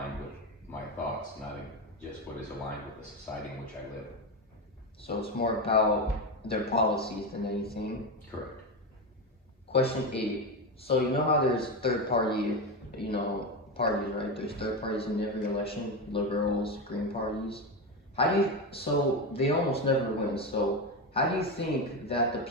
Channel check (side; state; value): both; normal; correlation 0.15